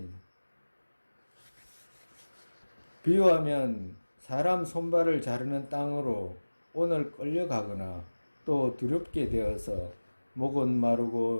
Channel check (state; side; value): inverted; both; correlation -1.00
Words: 비유하면 사람 손발을 자르는 땅으로 오늘 끌려가거나 또 두렵게 되어서 목은